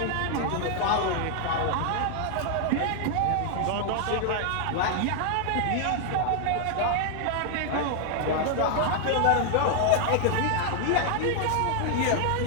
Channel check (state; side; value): different; both; correlation 0.00